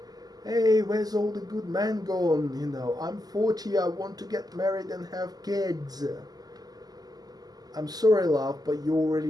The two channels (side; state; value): left; late; 0.19 ms